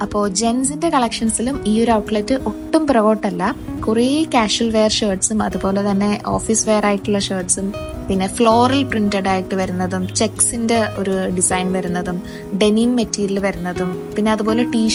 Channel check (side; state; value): both; identical; correlation 1.00